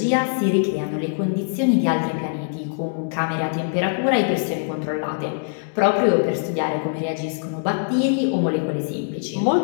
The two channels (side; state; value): right; silent; digital silence